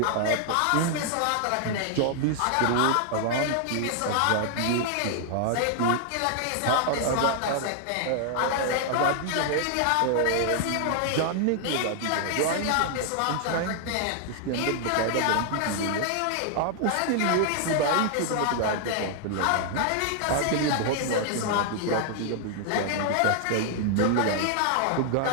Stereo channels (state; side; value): different; both; correlation 0.00